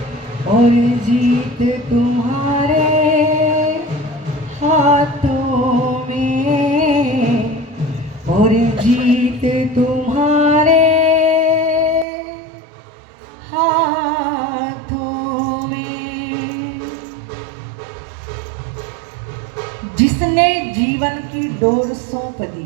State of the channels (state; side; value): drops out; left; at 12.1 s